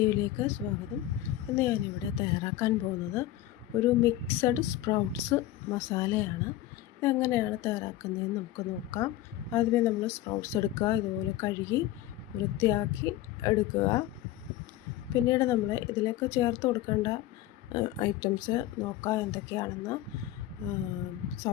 സ്വാഗതം. ഇന്ന് ഞാനിവിടെ തയ്യാറാക്കാൻ പോകുന്നത് ഒരു മിക്സഡ് സ്പ്രൗട്ട്സ് മസാലയാണ്. ഇതെങ്ങനെയാണ് തയ്യാറാക്കുന്നതെന്ന് നമുക്ക് നോക്കാം. ആദ്യമേ നമ്മൾ സ്പ്രൗട്ട്സ് എടുക്കുക, ഇതുപോലെ കഴുകി വൃത്തിയാക്കി എടുക്കുക. പിന്നീട് നമ്മൾ ഇതിലേക്ക് ചേർത്ത് കൊടുക്കേണ്ട ഐറ്റംസ് നോക്കാം എന്തൊക്കെയാണെന്ന്.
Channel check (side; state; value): right; quieter; 14.1 dB